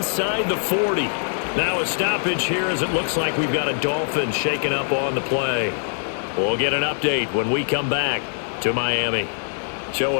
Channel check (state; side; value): silent; right; 64 dB below the other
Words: the 40. Now a stoppage here as it looks like we've got a Dolphin shaken up on the play. We'll get an update when we come back to Miami. So